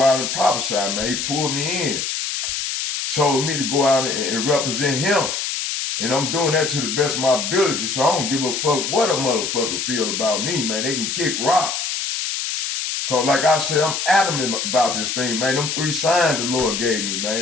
and prophesy, man. He pulled me in, told me to go out and represent Him, and I'm doing that to the best of my ability. So I don't give a fuck what a motherfucker feel about me, man. They can kick rocks. Cause like I said, I'm adamant about this thing, man. Them 3 signs the Lord gave me,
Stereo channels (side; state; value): left; noise; hiss, 2 dB below the sound